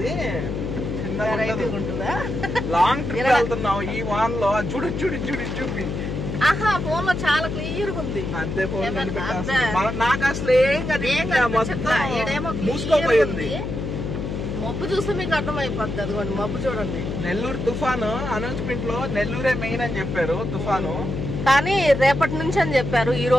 లాంగ్ ట్రిప్ వెళ్తున్నావు ఈ వాన్ లో. చూపి ఆహా, ఫోన్ లో చాలా క్లియర్ గా ఉంది. అంతే, ఫోన్ నాకు అసలు ఏం మూసుకోపోయింది. మబ్బు చూస్తే మీకు అర్థమైపోద్ది. అదిగోండి మబ్బు చూడండి. నెల్లూరు తుఫాను అనౌన్స్మెంట్ లో నెల్లూరే మెయిన్ అని చెప్పారు తుఫాను, కానీ రేపటి నుంచి అని చెప్పారు. ఈ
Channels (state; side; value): noise; left; hum, 4 dB below the sound